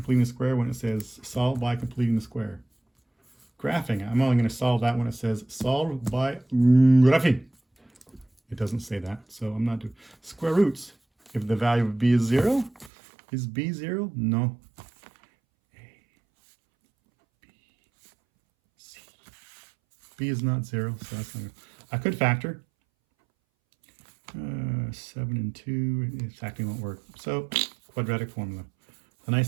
the square when it says solve by completing the square. Graphing, I'm only going to solve that when it says solve by graphing. It doesn't say that, so I'm not doing square roots. If the value of b is 0, is b 0? No. A, B, C. B is not 0, so that's not good. I could factor. 7 and 2, factoring won't work. So, quadratic formula. The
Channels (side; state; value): left; drops out; at 12.9 s